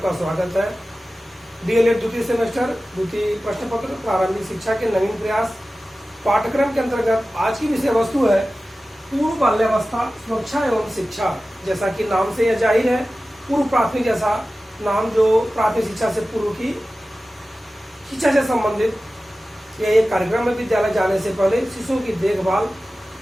स्वागत है। डीएलएड द्वितीय सेमेस्टर द्वितीय प्रश्न पत्र प्रारंभिक शिक्षा के नवीन प्रयास पाठ्यक्रम के अंतर्गत आज की विषय वस्तु है पूर्व बाल्यावस्था सुरक्षा एवं शिक्षा। जैसा कि नाम से यह जाहिर है, पूर्व प्राथमिक जैसा नाम जो प्राथमिक शिक्षा से पूर्व की शिक्षा से संबंधित यह एक कार्यक्रम है। विद्यालय जाने से पहले शिशुओं की देखभाल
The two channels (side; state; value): both; normal; correlation 0.95